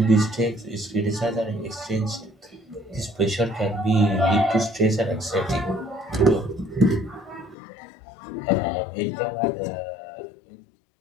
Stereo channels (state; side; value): drops out; right; at 7.6 s